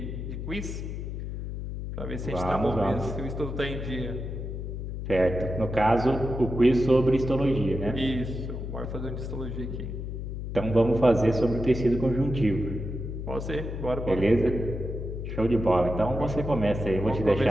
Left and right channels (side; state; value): left; noise; hum, 6 dB below the sound